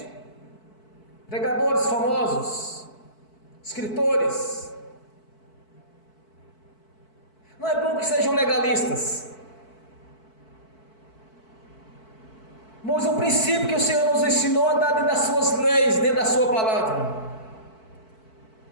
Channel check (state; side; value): late; right; 4.6 ms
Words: Pregadores famosos, escritores. Não é bom que sejam legalistas, mas o princípio que o Senhor nos ensinou a andar dentro das suas leis, dentro da sua palavra.